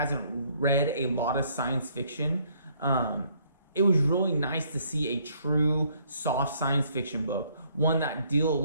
read a lot of science fiction, it was really nice to see a true soft science fiction book, one that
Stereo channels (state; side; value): inverted; both; correlation -0.66